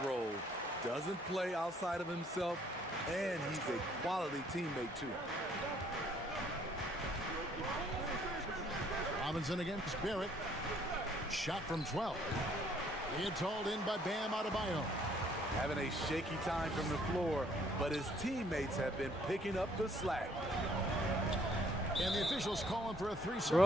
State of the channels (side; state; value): both; normal; correlation 0.63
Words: role. Doesn't play outside of himself. And he's a quality teammate, too. Robinson against Barrett. Shot from 12. It's hauled in by Bam Adebayo. Having a shaky time from the floor, but his teammates have been picking up the slack. And the officials calling for a 3-second